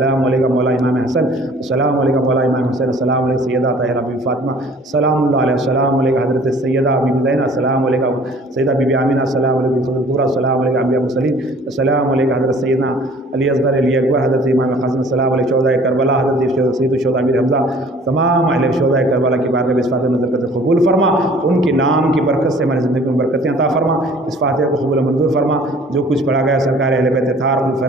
علیک مولا امام حسن، السلام علیک مولا امام حسین، السلام علیک سیدہ طاہرہ بی فاطمہ سلام اللہ علیہ، السلام علیک حضرت سیدہ بی زینب، السلام علیک سیدہ بی آمینہ، السلام علیک الکبریٰ، السلام علیک انبیاء مرسلین، السلام علیک حضرت سیدنا علی اصغر علی اکبر، حضرت امام قاسم، السلام علیک شہداء کربلا، حضرت سید الشہداء امیر حمزہ، تمام اہل شہداء کربلا کی بارگاہ میں اس فاتحہ نظر کرتے قبول فرما، ان کے نام کی برکت سے ہماری زندگی میں برکتیں عطا فرما، اس فاتحہ کو قبول منظور فرما، جو کچھ پڑھا گیا سرکار اہل بیت اطہار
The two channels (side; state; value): both; normal; correlation 0.52